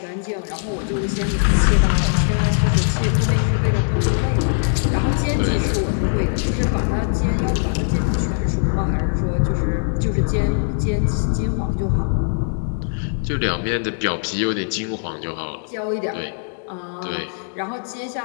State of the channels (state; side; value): silent; right; digital silence